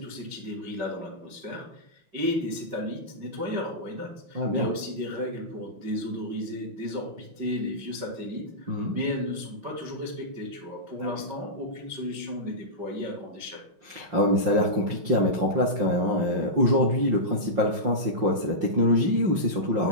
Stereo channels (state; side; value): late; left; 5.7 ms